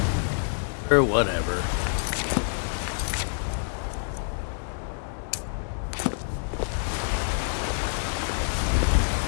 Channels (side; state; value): right; silent; digital silence